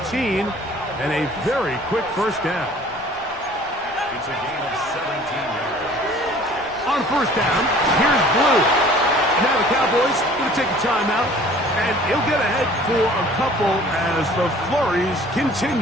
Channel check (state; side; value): noise; left; rumble, 24 dB below the sound